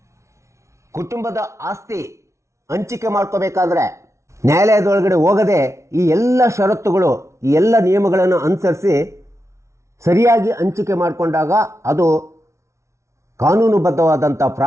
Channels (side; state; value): left; late; 0.14 ms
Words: ಕುಟುಂಬದ ಆಸ್ತಿ ಹಂಚಿಕೆ ಮಾಡ್ಕೋಬೇಕಾದ್ರೆ ನ್ಯಾಯಾಲಯದೊಳಗಡೆ ಹೋಗದೆ ಈ ಎಲ್ಲ ಷರತ್ತುಗಳು, ಈ ಎಲ್ಲ ನಿಯಮಗಳನ್ನು ಅನುಸರಿಸಿ ಸರಿಯಾಗಿ ಹಂಚಿಕೆ ಮಾಡಿಕೊಂಡಾಗ ಅದು ಕಾನೂನುಬದ್ಧವಾದಂಥ